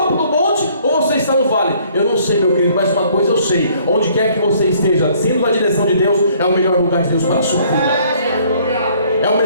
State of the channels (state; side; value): inverted; both; correlation -0.61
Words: do monte ou você está no vale. Eu não sei, meu querido, mas uma coisa eu sei: onde quer que você esteja, sendo na direção de Deus, é o melhor lugar de Deus para a sua vida. É o